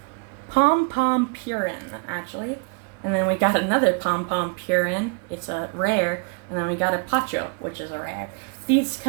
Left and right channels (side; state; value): left; quieter; 34.1 dB